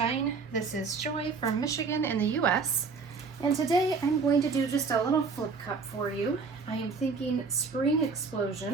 this is Joy from Michigan in the US, and today I'm going to do just a little flip cup for you. I am thinking spring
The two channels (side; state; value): left; quieter; 4.8 dB